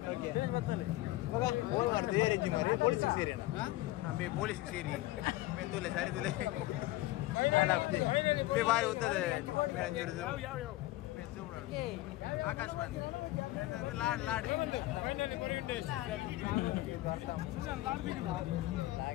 ಓಕೆ ಮಗ ಫೋನ್ ಮಾಡ್ತೀವಿ ಏರೆಂಜಿ ಮಾರಿ ಪೊಲೀಸ್ ಸೇರಿ ಅಣ್ಣ ಪೊಲೀಸ್ ಸೇರಿ ಮೆಂದುಲೆ ಸಾರಿ ತುಲೆ ಬಾರಿ ಉದ್ದದೆ ಆಕಾಶ್ ಬಂದ್ ಲಾಡ್ ಲಾಡ್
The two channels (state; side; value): quieter; right; 17.5 dB